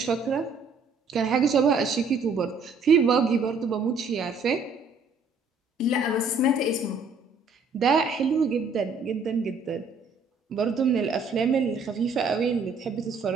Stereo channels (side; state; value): left; quieter; 4.0 dB